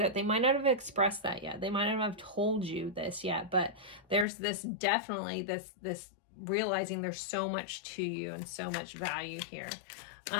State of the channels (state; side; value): drops out; right; at 4.2 s